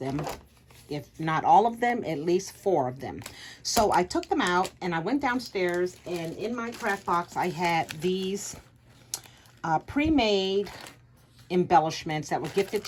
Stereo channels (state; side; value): identical; both; correlation 1.00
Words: If not all of them, at least 4 of them. So I took them out and I went downstairs, and in my craft box I had these pre-made embellishments that were gifted